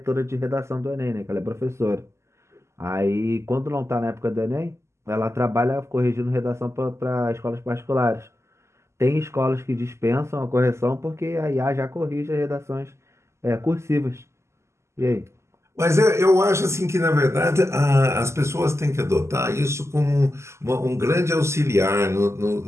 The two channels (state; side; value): late; left; 0.13 ms